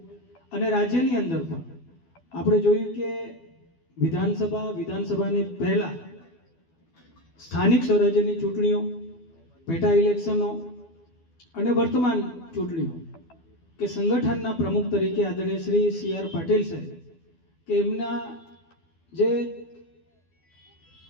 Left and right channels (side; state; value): right; late; 12 ms